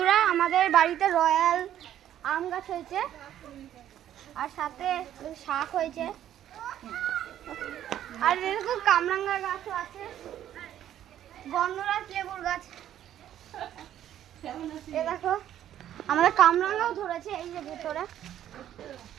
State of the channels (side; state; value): left; quieter; 11.3 dB